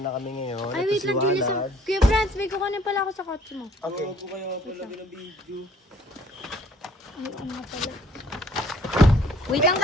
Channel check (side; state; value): both; normal; correlation 0.58